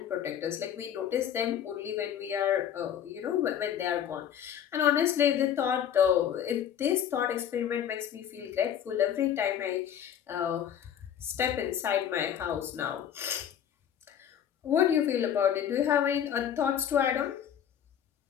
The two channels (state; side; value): quieter; right; 9.4 dB